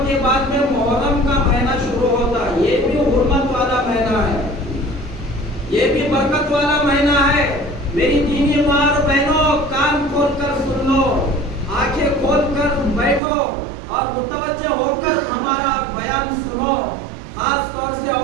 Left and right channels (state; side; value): drops out; left; at 13.2 s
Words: کے بعد میں محرم کا مہینہ شروع ہوتا ہے، یہ بھی حرمت والا مہینہ ہے، یہ بھی برکت والا مہینہ ہے۔ میری دینی ماں اور بہنوں کان کھول کر سن لو، آنکھیں کھول کر بیٹھو اور متوجہ ہو کر ہمارا بیان سنو۔ خاص طور سے